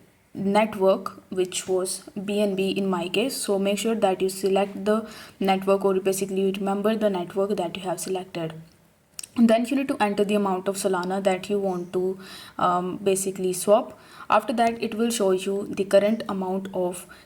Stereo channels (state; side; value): identical; both; correlation 1.00